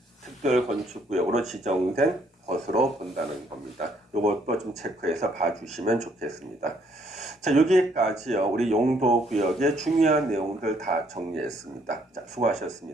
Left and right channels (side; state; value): both; normal; correlation 0.67